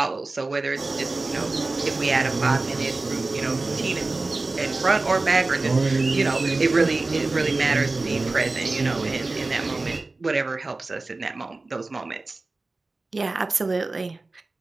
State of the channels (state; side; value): quieter; left; 3.4 dB